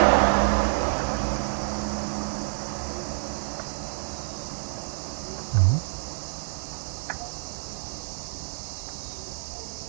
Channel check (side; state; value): left; silent; digital silence